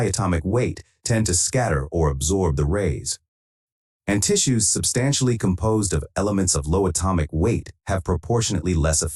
atomic weight tend to scatter or absorb the rays, and tissues substantially composed of elements of low atomic weight have proportionately less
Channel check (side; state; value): both; identical; correlation 1.00